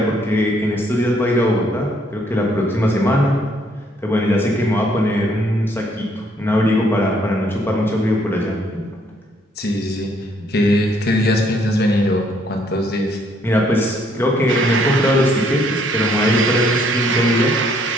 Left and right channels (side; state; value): both; normal; correlation 0.67